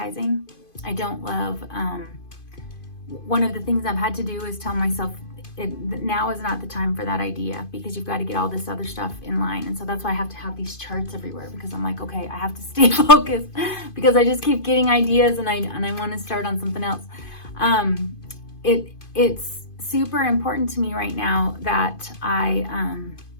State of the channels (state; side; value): late; right; 2.5 ms